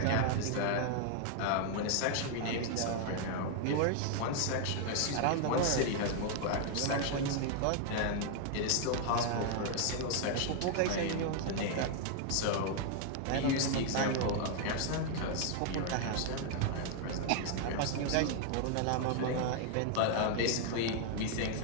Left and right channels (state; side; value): different; both; correlation 0.00